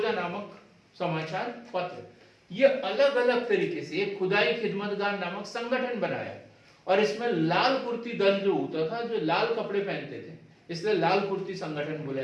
नामक समाचार पत्र, ये अलग अलग तरीके से एक खुदाई खिदमतगार नामक संगठन बनाया। और इसमें लाल कुर्ती दल जो होता था, जो लाल कपड़े पहनते थे, इसलिए लाल कुर्ती संगठन बोला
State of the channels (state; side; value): identical; both; correlation 1.00